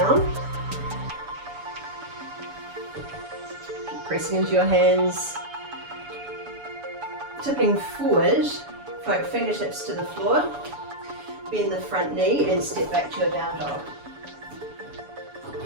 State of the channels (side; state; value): left; late; 7.0 ms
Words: Keep pressing into your hands. Tipping forward, float fingertips to the floor. Bend the front knee and step back to your down dog.